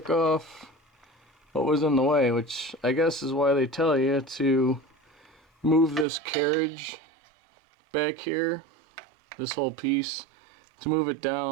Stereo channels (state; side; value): drops out; left; at 6.1 s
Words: off what was in the way, which I guess is why they tell you to move this carriage back here, this whole piece, to move it